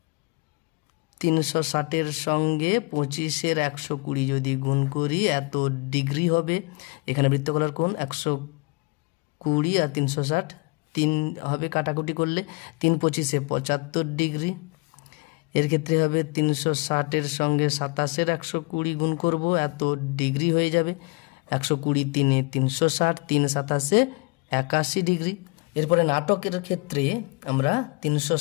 360-এর সঙ্গে 25-এর 120 যদি গুণ করি এত ডিগ্রি হবে। এখানে বৃত্তকলার কোণ 120 আর 360 3 হবে কাটাকুটি করলে, 3 25-এ 75 ডিগ্রি। এর ক্ষেত্রে হবে 360-এর সঙ্গে 27-এর 120 গুণ করব, এত ডিগ্রি হয়ে যাবে। 120 3-এ 360, 3 27-এ 81 ডিগ্রি। এরপরে নাটকের ক্ষেত্রে আমরা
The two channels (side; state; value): right; quieter; 28.2 dB